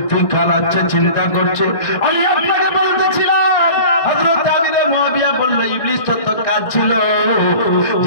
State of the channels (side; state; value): right; late; 1.5 ms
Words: খারাচ্ছে, চিন্তা করছে। আমি আপনাকে বলতেছিলাম হযরত আমিরে মুয়াবিয়া বলল ইবলিস তো কাজ ছিল